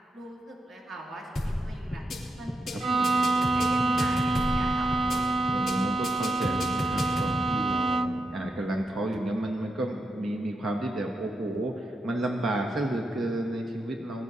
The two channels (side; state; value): both; normal; correlation 0.85